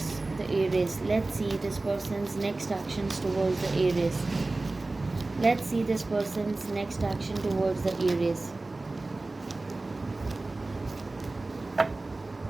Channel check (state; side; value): quieter; left; 3.1 dB